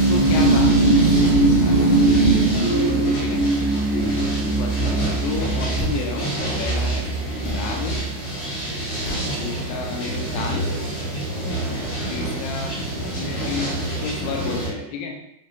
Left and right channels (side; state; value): right; late; 28 ms